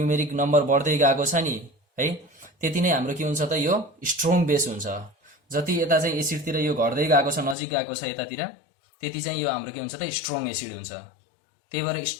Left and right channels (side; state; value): right; drops out; at 7.6 s